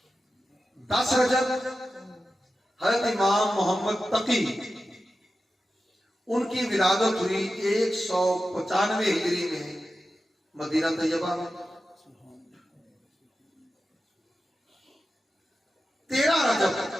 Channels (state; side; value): normal; both; correlation 0.92